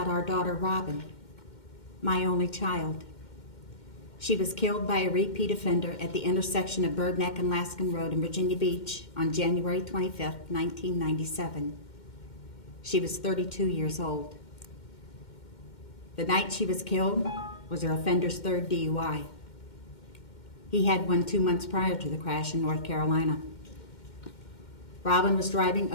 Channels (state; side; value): late; right; 2.1 ms